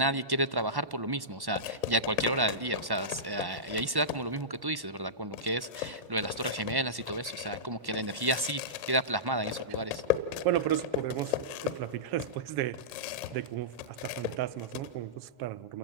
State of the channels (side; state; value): left; late; 1.1 ms